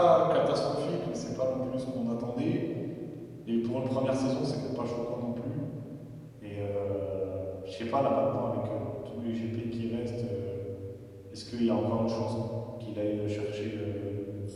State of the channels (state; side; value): identical; both; correlation 1.00